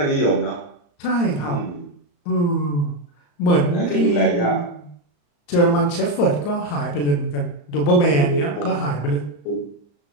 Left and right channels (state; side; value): late; right; 34 ms